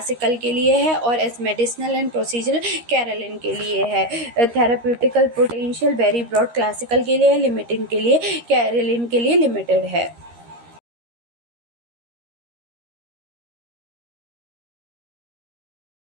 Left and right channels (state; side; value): late; left; 13 ms